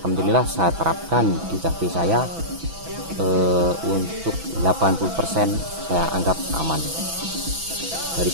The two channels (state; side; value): late; left; 6.1 ms